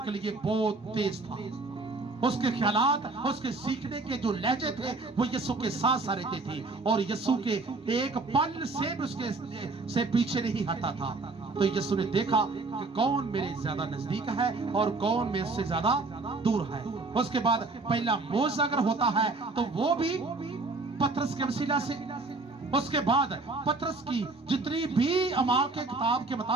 लिए बहुत तेज था। उसके ख्यालात, उसके सीखने के जो लहजे थे वो यीशु के साथ साथ रहते थे और यीशु के एक पल से भी उसके से पीछे नहीं हटा था। तो यीशु ने देखा कि कौन मेरे ज्यादा नजदीक है और कौन मेरे से ज्यादा दूर है। उसके बाद पहला मोज़ अगर होता है तो वो भी पतरस के वसीला से। उसके बाद पतरस की जितनी भी अमाल के किताब के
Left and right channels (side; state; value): left; quieter; 3.6 dB